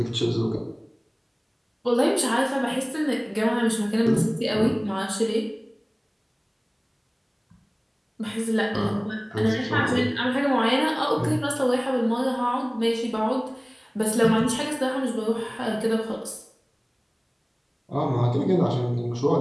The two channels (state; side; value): identical; both; correlation 1.00